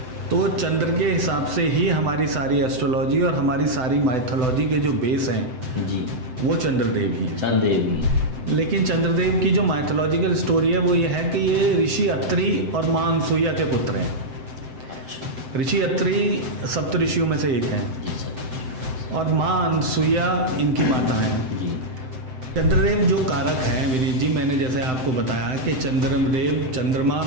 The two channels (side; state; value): left; late; 7.8 ms